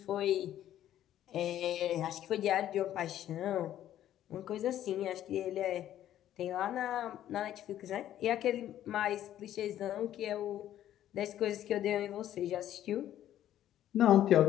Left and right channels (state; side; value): quieter; right; 11.9 dB